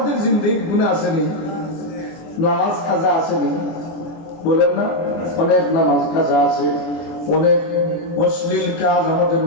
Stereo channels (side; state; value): right; late; 24 ms